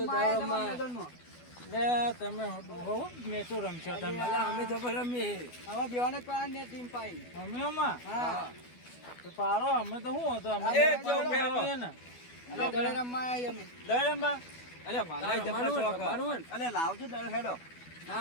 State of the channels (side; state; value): right; late; 12 ms